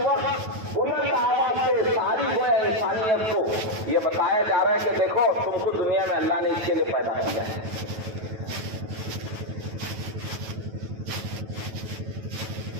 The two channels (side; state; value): left; late; 9.2 ms